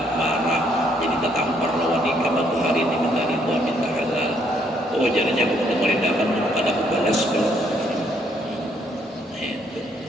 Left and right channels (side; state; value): both; normal; correlation 0.69